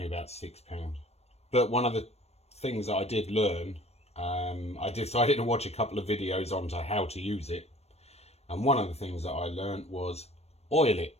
about £6. But one of the things that I did learn, I decided to watch a couple of videos on to how to use it. And one of the things that I learned was oil it.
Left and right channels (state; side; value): late; right; 0.31 ms